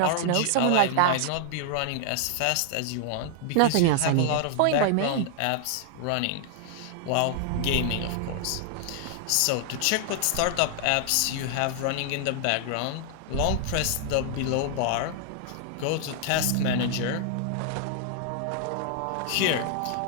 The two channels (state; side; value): different; both; correlation 0.00